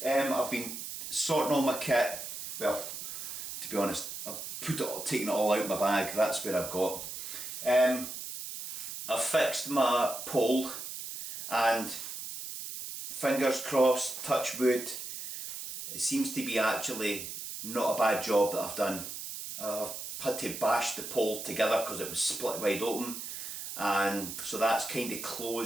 I've been sorting all my kit. Well, to be honest, I've taken it all out of my bag. That's where I've got. I've fixed my pole, and fingers crossed, touch wood, it seems to be actually not a bad job that I've done. I've had to bash the pole together because it was split wide open, and so that's kind of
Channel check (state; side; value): noise; right; hiss, 8 dB below the sound